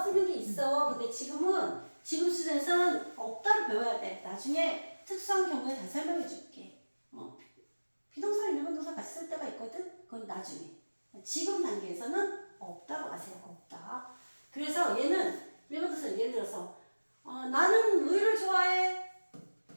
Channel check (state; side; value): inverted; both; correlation -1.00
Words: 게 있어. 근데 지금 수준에서는 없다를 배워야 돼. 나중에 특수한 경우에 다 설명해 줄게. 비동사랑 일반 동사 같이 쓸 때가 있거든. 그건 나중에. 지금 단계에서는 없다고 하세요. 없다. 그래서 얘는 일반 동사 예를 들어서 나는 우유를 좋아해.